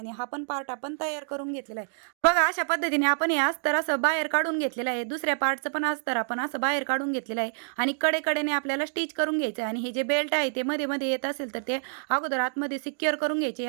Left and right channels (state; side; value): silent; left; digital silence